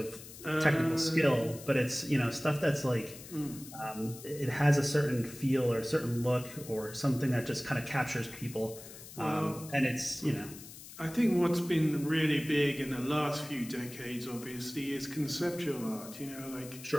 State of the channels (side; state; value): left; noise; hiss, 15 dB below the sound